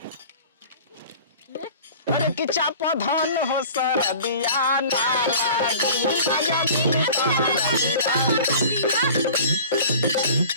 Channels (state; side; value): inverted; both; correlation -0.43